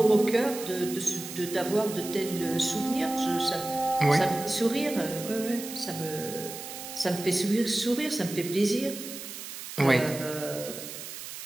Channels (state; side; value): noise; right; hiss, 10 dB below the sound